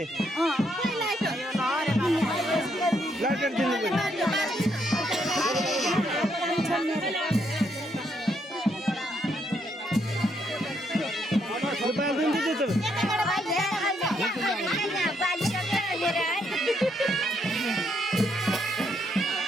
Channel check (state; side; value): normal; both; correlation 0.75